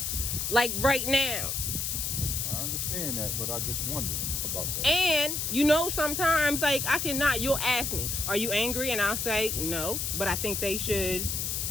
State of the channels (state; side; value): noise; left; hiss, 1 dB below the sound